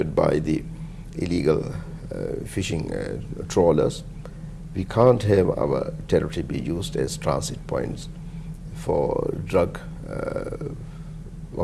by the illegal fishing trawlers. We can't have our territory be used as transit points for drug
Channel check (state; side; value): identical; both; correlation 1.00